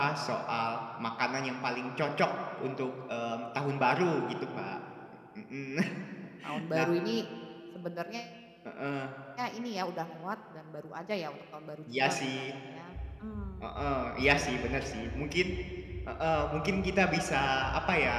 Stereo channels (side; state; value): both; identical; correlation 1.00